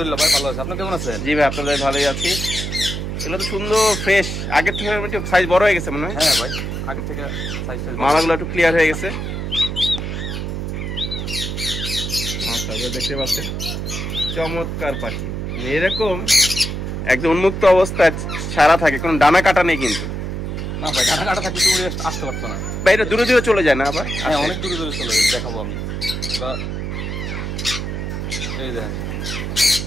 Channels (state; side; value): noise; right; hum, 4 dB below the sound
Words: ভাই ভালো আছি। আপনি কেমন আছেন? জি ভাই আপনাদের ভালোই আছি। এগুলো তো সুন্দর ফ্রেশ, আগের থেকে একটু সাইজ বড় হয়ে গেছে মনে হয়। হ্যাঁ ভাই আগের থেকে সাইজ মালাগুলো একটু ক্লিয়ার হয়ে গেছে। মাশাআল্লাহ দেখতে পাচ্ছেন চমৎকার পাখি, এরকম একদম উন্মুক্ত অবস্থায় সারা থাকে, কোনো ডানা কাটা নেই কিন্তু। না ভাই ডানা কাটা থাকলে তুমি আসতে পারতো না ভাই। এটা দূরে দূরে চলে যায় না আবার? হ্যাঁ অনেক দূরে দূরে চলে যায়, দেখাবো আমি। বা এই দেখেন